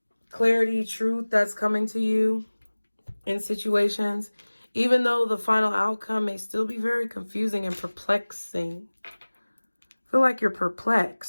Clarity, truth that's coming to you in situations. Even though the final outcome may still be very confusing and perplexing. I feel like you're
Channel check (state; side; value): inverted; both; correlation -1.00